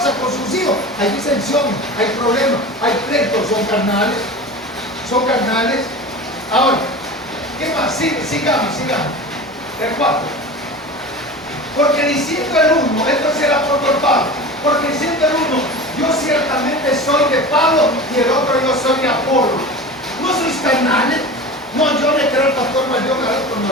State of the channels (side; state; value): both; normal; correlation 0.32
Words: con sus hijos. Hay disensiones, hay problemas, hay pleitos. Son carnales. Son carnales. Ahora, ¿qué más? Sigamos. El 4. Porque diciendo el uno, esto es el apóstol Pablo, porque diciendo el uno, yo ciertamente soy de Pablo y el otro yo soy de Apolo. ¿No sois carnales? No, yo le creo al pastor Valdión, al otro no